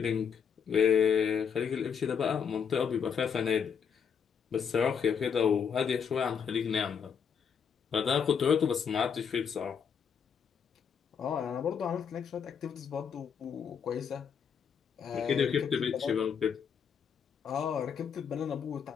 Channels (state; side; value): quieter; right; 7.0 dB